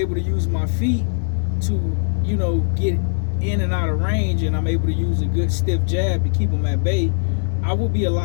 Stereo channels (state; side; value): silent; right; digital silence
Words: to use my feet to, get in and out of range, and I'm able to use a good stiff jab to keep him at bay. I will be a